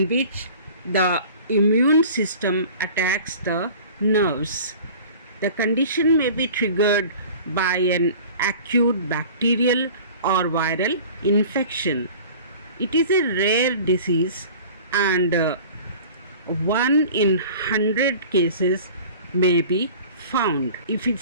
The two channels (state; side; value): inverted; both; correlation -0.43